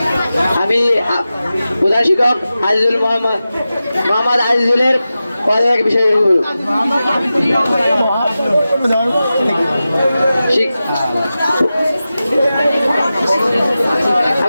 আমি প্রধান শিক্ষক আজিজুল মোহাম্মদ আজিজুলের পদত্যাগ বিষয়ে বলব।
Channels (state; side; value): inverted; both; correlation -0.94